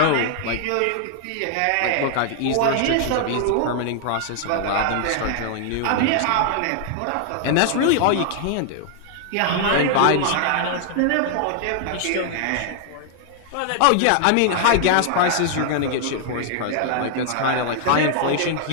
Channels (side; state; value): both; different; correlation 0.00